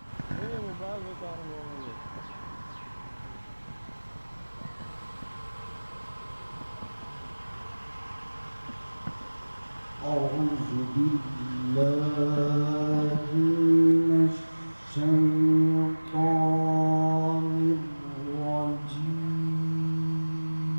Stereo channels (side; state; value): both; inverted; correlation -1.00